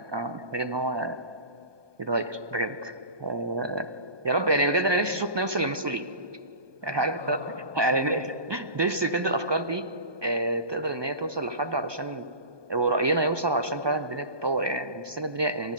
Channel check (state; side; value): late; left; 1.2 ms